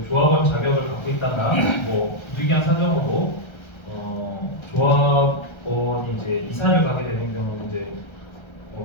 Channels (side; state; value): right; late; 1.3 ms